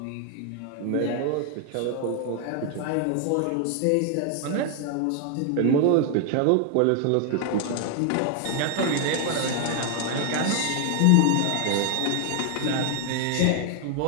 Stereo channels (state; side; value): different; both; correlation 0.00